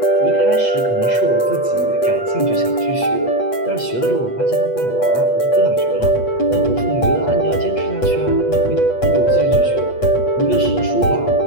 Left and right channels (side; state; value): right; late; 8.2 ms